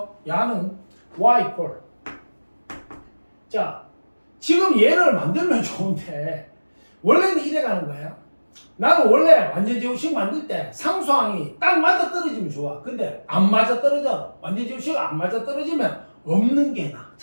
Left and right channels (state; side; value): inverted; both; correlation -1.00